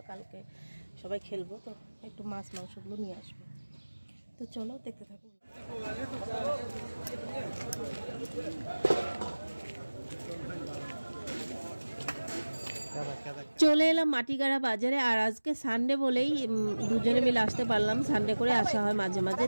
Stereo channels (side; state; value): both; inverted; correlation -1.00